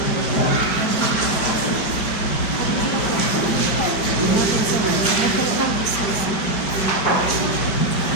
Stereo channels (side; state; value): right; late; 5.3 ms